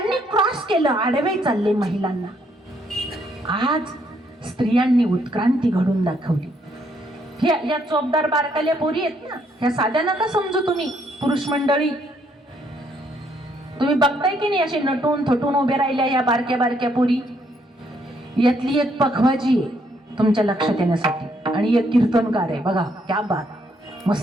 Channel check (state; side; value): normal; both; correlation 0.71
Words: क्रॉस केलं, आडवे चालले महिलांना, आज स्त्रियांनी उत्क्रांती घडून दाखवली. या चोपदार बारकाल्या पोरी आहेत ना, ह्या साध्या नका समजू तुम्ही. पुरुष मंडळी तुम्ही बघताय की नाही, असे नटून थटून उभे राहिल्या या बारक्या बारक्या पोरी. यातली एक पखवाजी आहे तुमच्या लक्षात येण्यासाठी आणि एक कीर्तनकार आहे. बघा क्या बात,